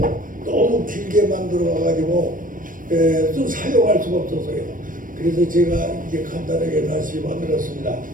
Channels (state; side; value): late; left; 0.39 ms